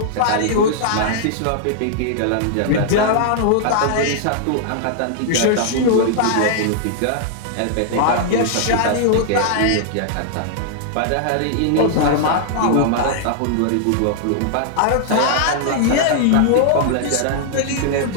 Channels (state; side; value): different; both; correlation -0.01